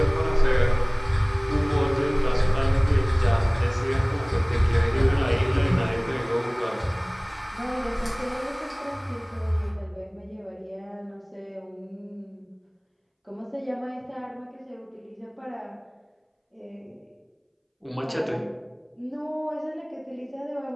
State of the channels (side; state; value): both; identical; correlation 1.00